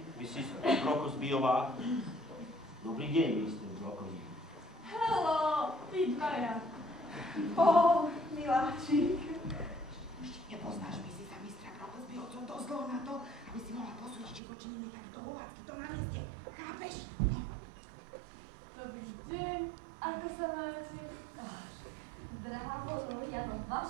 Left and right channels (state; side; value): drops out; left; at 14.4 s